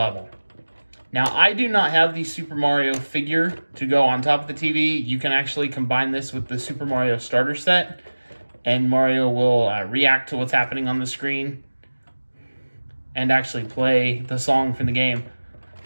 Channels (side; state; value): both; inverted; correlation -1.00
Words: Now, I do not have the Super Mario figure to go on top of the TV. You can actually combine this with the Super Mario starter set, and Mario will react to what's happening on the screen and actually play the song from the game.